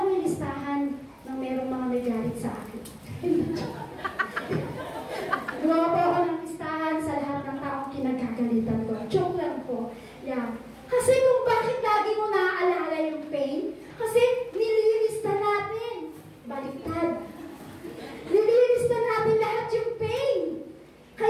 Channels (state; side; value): identical; both; correlation 1.00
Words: yung listahan ng merong mga nagalit sa akin. Gumawa po ako ng listahan sa lahat ng taong kinagkagalitan ko. Joke lang po. Yeah. Kasi kung bakit lagi mo naaalala yung pain, kasi nililista natin. Baliktad. Nililista natin lahat yung pain.